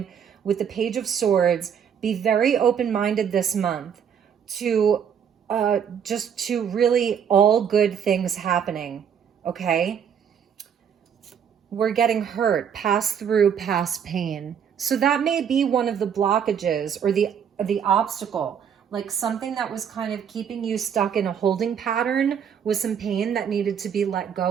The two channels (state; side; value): quieter; left; 8.0 dB